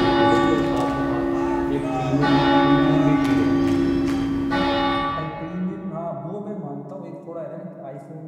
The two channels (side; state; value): both; identical; correlation 1.00